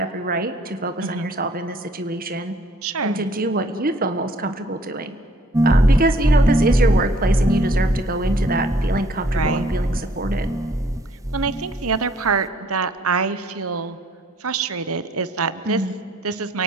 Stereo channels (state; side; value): normal; both; correlation 0.60